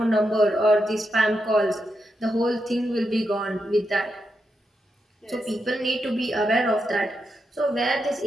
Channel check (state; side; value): normal; both; correlation 0.85